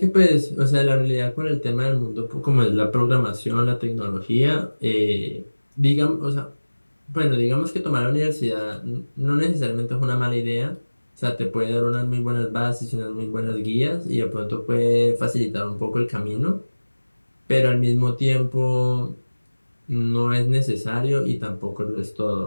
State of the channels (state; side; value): inverted; both; correlation -1.00